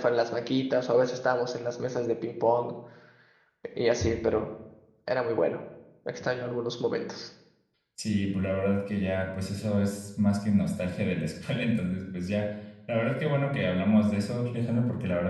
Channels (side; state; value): both; identical; correlation 1.00